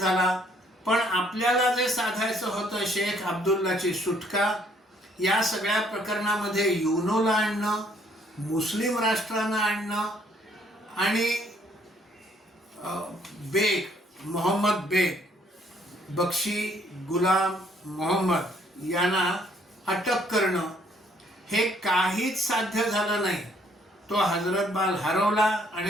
पण आपल्याला जे साधायचं होतं शेख अब्दुल्लाची सुटका, या सगळ्या प्रकरणामध्ये युनोला आणणं, मुस्लिम राष्ट्रांना आणणं आणि मोहम्मद बेग, बक्षी गुलाम मोहम्मद यांना अटक करणं, हे काहीच साध्य झालं नाही. तो हजरत बाल हरवला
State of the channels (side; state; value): both; normal; correlation 0.65